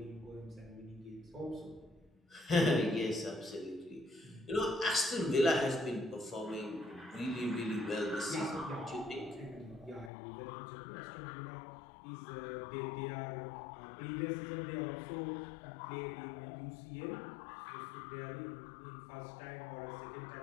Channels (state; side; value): drops out; right; at 10.1 s